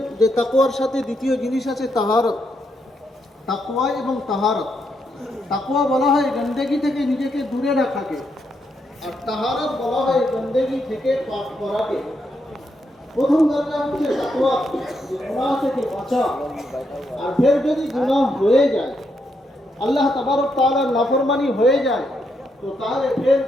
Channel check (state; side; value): normal; both; correlation 0.79